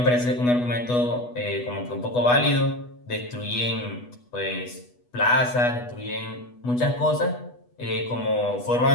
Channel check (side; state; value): right; late; 8.2 ms